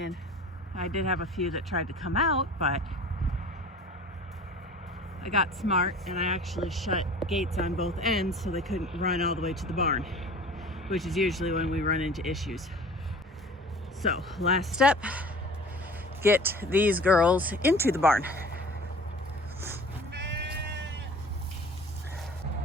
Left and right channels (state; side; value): normal; both; correlation 0.43